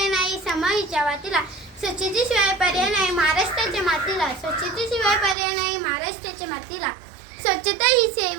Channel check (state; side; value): drops out; left; at 5.4 s